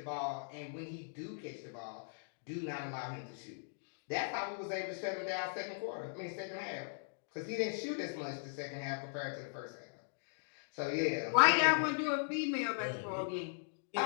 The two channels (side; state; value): right; silent; digital silence